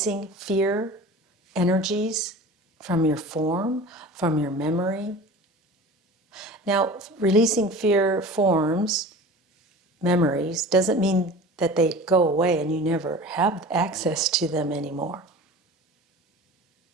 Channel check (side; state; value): both; normal; correlation 0.38